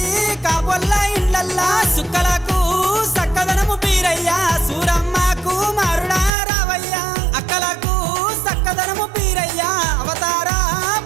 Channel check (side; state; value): left; drops out; at 6.3 s